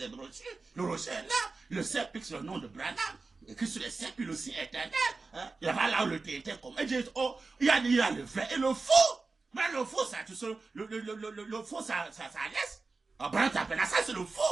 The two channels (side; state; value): left; quieter; 3.9 dB